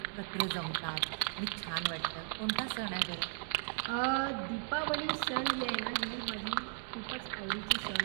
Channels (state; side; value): silent; left; 54 dB below the other